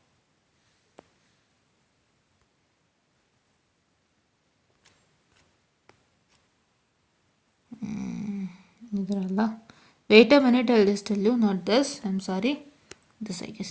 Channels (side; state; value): both; identical; correlation 1.00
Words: ಇದರಲ್ಲ, wait a minute, I will just tell you, not this, I am sorry, this I